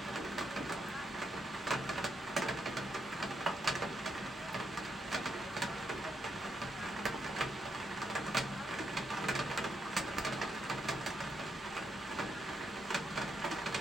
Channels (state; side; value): normal; both; correlation 0.80